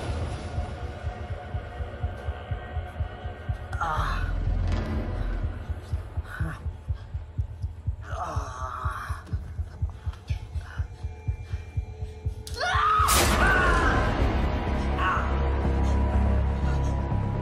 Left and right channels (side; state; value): both; identical; correlation 1.00